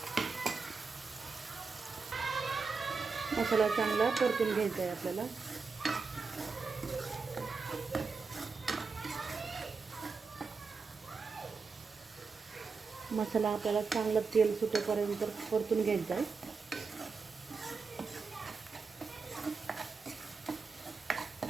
मसाला चांगला परतून घ्यायचा आहे आपल्याला. मसाला आपल्याला चांगलं तेल सुटेपर्यंत परतून घ्यायचा आहे.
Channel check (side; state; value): left; quieter; 4.7 dB